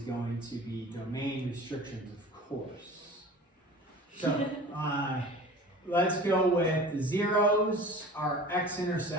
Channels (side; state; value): both; normal; correlation 0.40